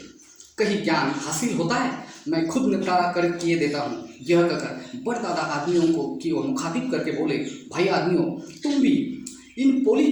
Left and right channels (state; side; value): identical; both; correlation 1.00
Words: कहीं ज्ञान हासिल होता है? मैं खुद निपटारा कर किए देता हूँ। यह कहकर बड़ दादा आदमियों को की ओर मुखातिब करके बोले, भाई आदमियों, तुम भी इन पोली